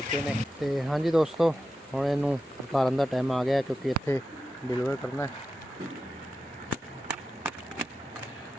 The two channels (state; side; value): normal; both; correlation 0.91